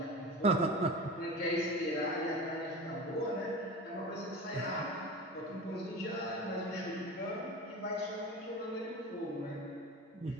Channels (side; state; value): both; normal; correlation 0.32